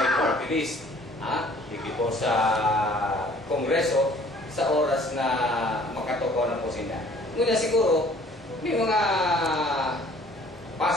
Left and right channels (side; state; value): both; normal; correlation 0.55